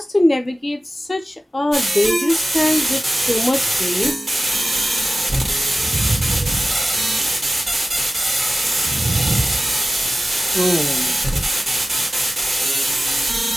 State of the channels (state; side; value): normal; both; correlation 0.96